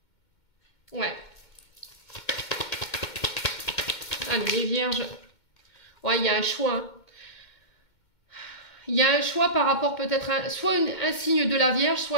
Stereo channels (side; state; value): right; late; 2.1 ms